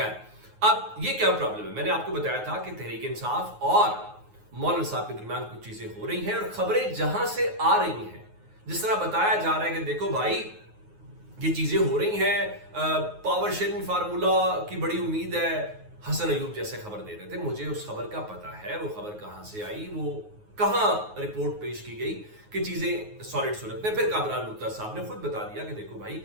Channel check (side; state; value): left; late; 9.5 ms